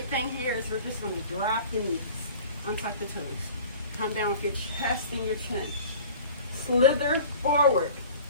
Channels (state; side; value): inverted; both; correlation -0.44